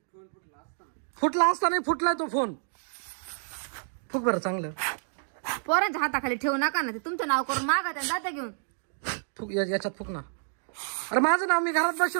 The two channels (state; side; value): silent; left; digital silence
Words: फुटला असता नाही फुटलाय तो फोन. फुक बरं चांगलं. पोरांच्या हाताखाली ठेवू नका ना, ते तुमचं नाव करून मागा त्या जाता घेऊन. फुक याच्यात फुक ना. अरे माझं नाव, मी घरात